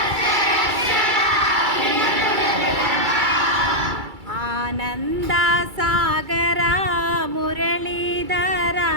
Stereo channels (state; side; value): late; left; 2.3 ms